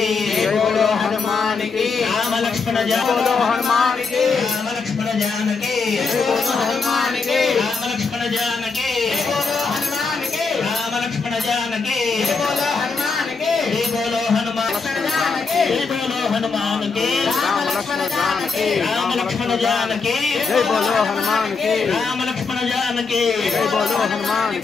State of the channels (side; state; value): right; quieter; 4.7 dB